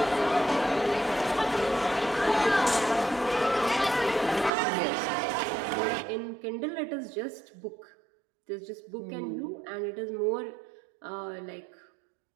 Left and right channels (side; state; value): left; drops out; at 4.5 s